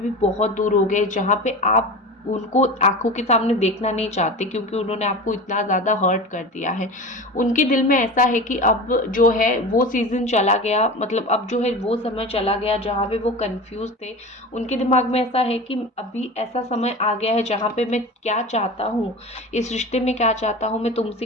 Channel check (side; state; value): both; normal; correlation 0.31